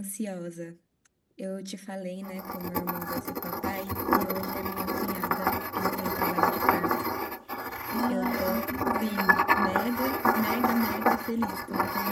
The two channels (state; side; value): identical; both; correlation 1.00